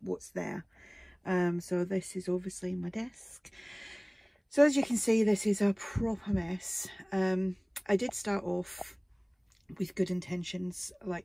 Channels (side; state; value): both; identical; correlation 1.00